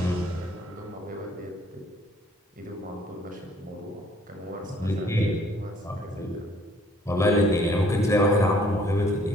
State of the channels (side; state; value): both; normal; correlation 0.60